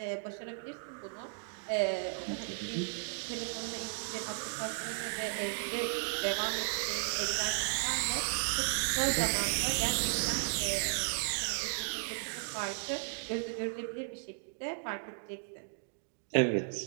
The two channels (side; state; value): left; silent; digital silence